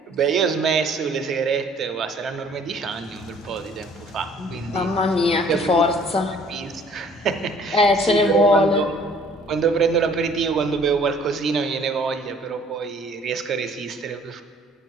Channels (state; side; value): normal; both; correlation 0.55